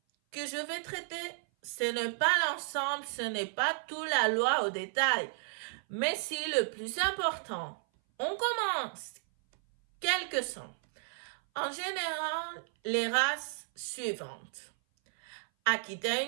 que je vais traiter, ce n'est pas l'ensemble, ce n'est pas toute la loi au détail, mais c'est le plus important. On commence. Quelles sont, en général, les races suivantes. Akita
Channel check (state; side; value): silent; left; 56 dB below the other